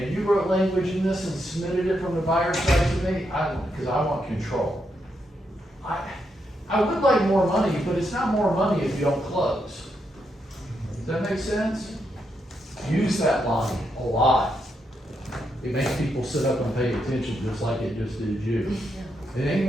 you wrote language in this and submitted it from the buyer's side to me, because I want control. I would like more money, but it's not more money if you don't close. Does that make sense? Use that line a lot. It makes people sit up and pay attention just like it just did you. It ain't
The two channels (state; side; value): normal; both; correlation 0.81